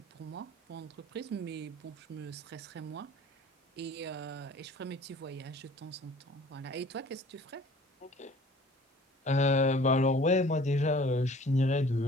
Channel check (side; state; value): both; normal; correlation 0.50